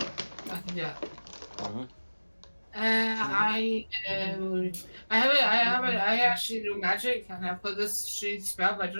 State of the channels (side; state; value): both; inverted; correlation -1.00